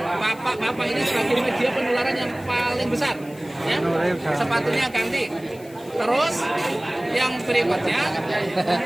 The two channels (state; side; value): noise; left; hiss, 23 dB below the sound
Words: bapak ini sebagai media penularan yang paling besar, ya. Sepatunya ganti. Terus yang berikutnya,